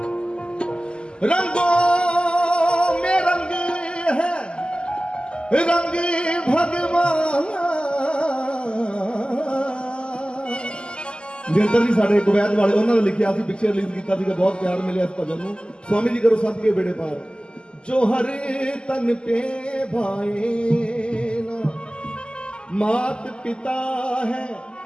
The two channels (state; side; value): late; right; 0.049 ms